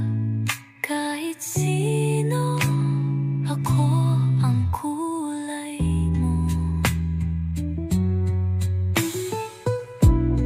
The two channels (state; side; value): identical; both; correlation 1.00